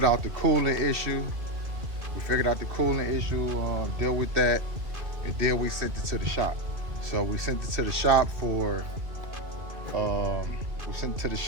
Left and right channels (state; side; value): late; left; 2.2 ms